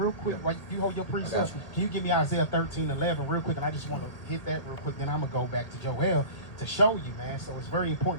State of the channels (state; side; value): late; right; 1.7 ms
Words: quick, right, you hold your precept. Can you give me Isaiah 13:11 real quick? And I just want to hit that real quick. Then I'm going to go back to Joel to show you, man. So it's very